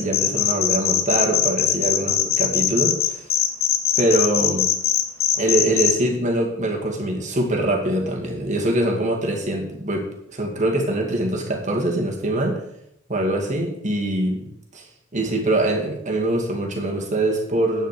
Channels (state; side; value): normal; both; correlation 0.37